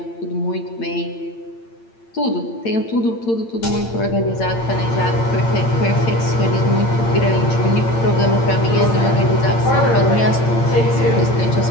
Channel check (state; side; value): late; right; 8.8 ms